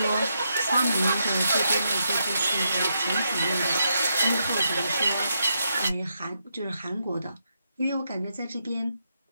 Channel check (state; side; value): inverted; both; correlation -0.82